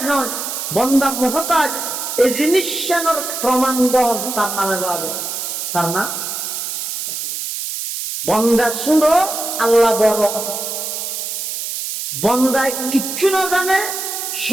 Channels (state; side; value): noise; right; hiss, 5 dB below the sound